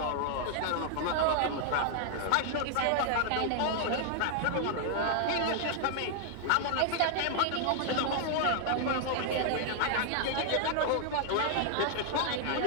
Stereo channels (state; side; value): different; both; correlation 0.00